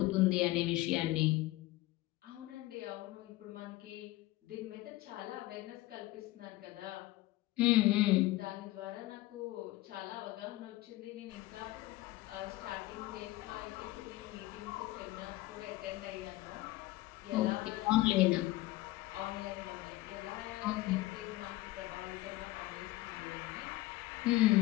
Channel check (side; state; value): right; quieter; 18.2 dB